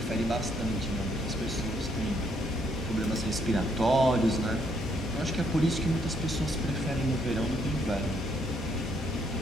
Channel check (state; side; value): normal; both; correlation 0.72